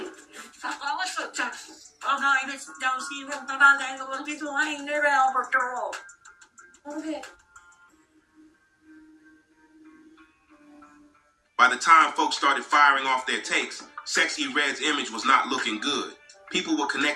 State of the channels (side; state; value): both; identical; correlation 1.00